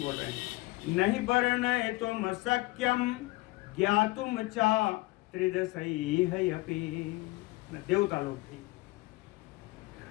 बोल रहे हैं। नहीं वर्णयितुं शक्यं ज्ञातुं च त्रिदशैरपि, देवता लोग भी।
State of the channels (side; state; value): right; quieter; 21.6 dB